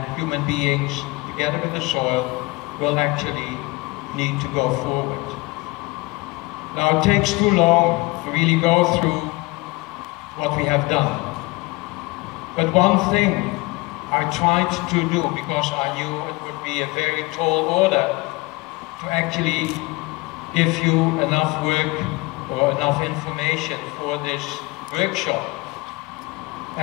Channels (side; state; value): right; quieter; 23.8 dB